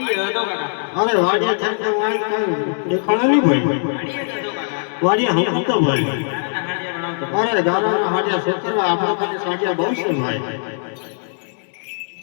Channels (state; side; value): silent; right; digital silence